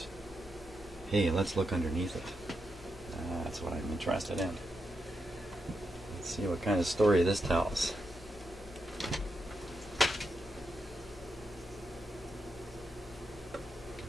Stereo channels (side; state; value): both; normal; correlation 0.84